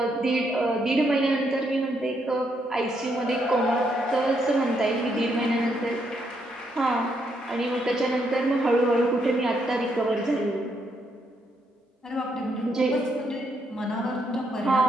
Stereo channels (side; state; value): both; normal; correlation 0.76